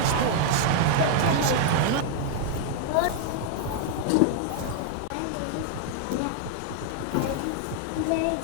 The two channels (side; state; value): both; different; correlation 0.00